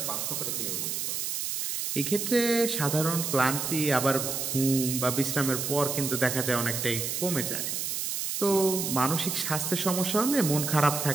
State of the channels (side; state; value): right; noise; hiss, 2 dB below the sound